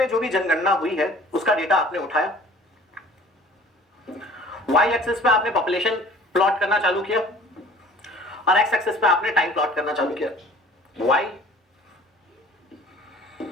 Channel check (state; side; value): normal; both; correlation 0.49